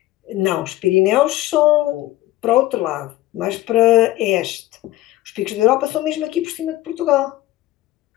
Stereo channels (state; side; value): quieter; right; 16.1 dB